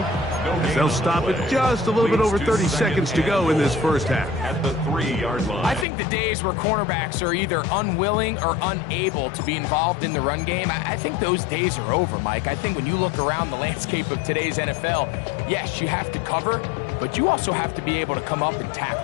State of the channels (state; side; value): drops out; right; at 5.9 s